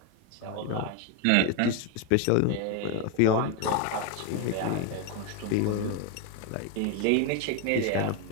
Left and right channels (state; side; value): different; both; correlation 0.02